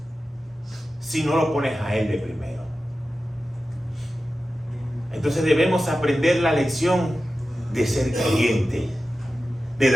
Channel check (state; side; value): normal; both; correlation 0.94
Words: si no lo pones a Él de primero. Entonces debemos aprender la lección de ser creyente, de